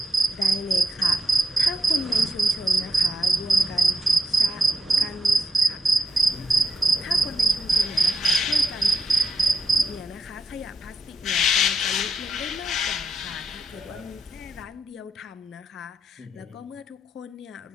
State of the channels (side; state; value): both; normal; correlation 0.85